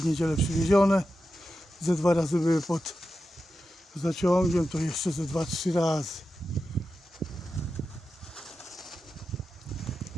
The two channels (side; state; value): both; normal; correlation 0.90